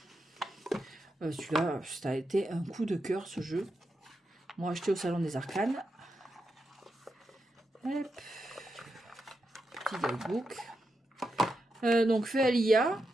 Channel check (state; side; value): normal; both; correlation 0.86